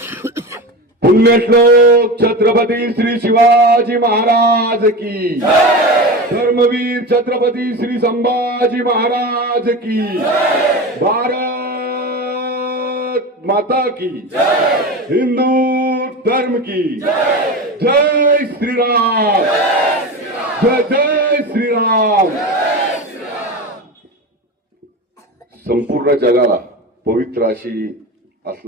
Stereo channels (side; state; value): both; normal; correlation 0.26